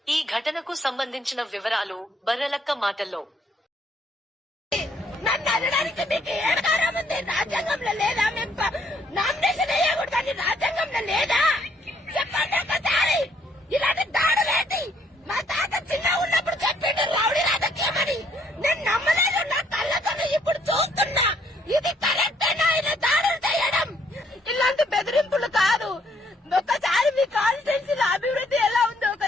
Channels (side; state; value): both; normal; correlation 0.67